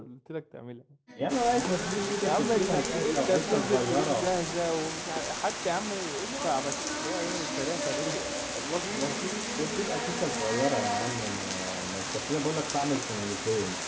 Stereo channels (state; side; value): identical; both; correlation 1.00